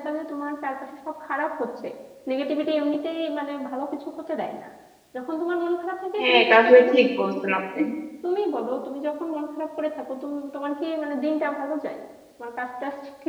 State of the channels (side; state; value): both; identical; correlation 1.00